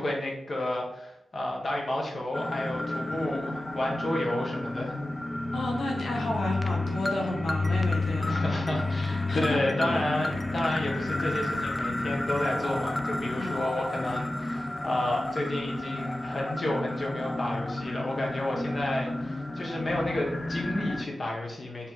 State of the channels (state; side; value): normal; both; correlation 0.94